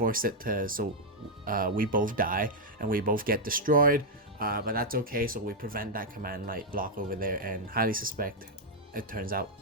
it to so we both die and we both get destroyed. But that's okay, so we prevent that Command Knight block over there, and highly suspect it turns out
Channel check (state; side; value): normal; both; correlation -0.02